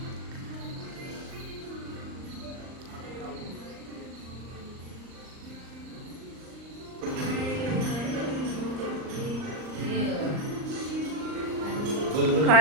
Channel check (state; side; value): late; left; 39 ms